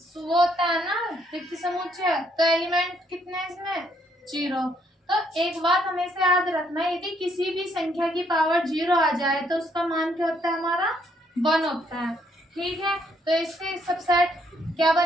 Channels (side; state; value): both; normal; correlation 0.70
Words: तो वो होता है ना रिक्त समुच्चय, तो एलिमेंट कितने हैं इसमें 0। तो एक बात हमेशा याद रखना है, यदि किसी भी संख्या की पावर 0 आ जाए तो उसका मान क्या होता है हमारा 1 होता है, ठीक है, तो इसके सबसेट क्या